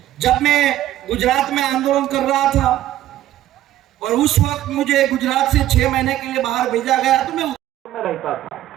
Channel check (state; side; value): quieter; left; 13.4 dB